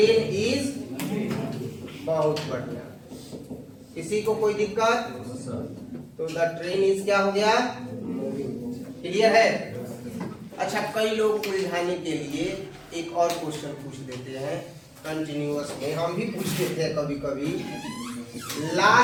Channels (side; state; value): both; identical; correlation 1.00